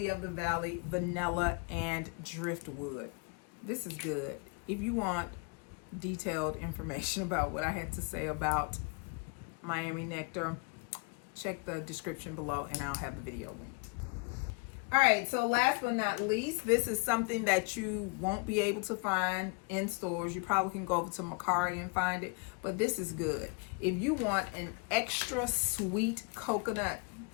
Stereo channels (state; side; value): quieter; right; 32.7 dB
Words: of the valley, vanilla, and driftwood. This is good. If you want detailed information about what I had to say about Miami Nectar, check the description below and I'll have the video linked. All right, so last but not least, this is something that you won't be able to find in stores. You probably can go over to Macari and find it, but this is good. If you want an extra sweet coconut,